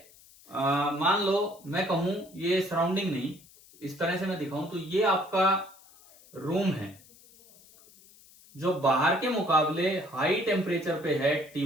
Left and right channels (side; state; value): left; noise; hiss, 25 dB below the sound